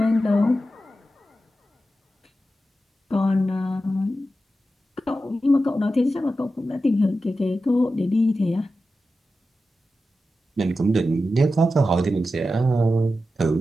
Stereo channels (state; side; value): normal; both; correlation 0.91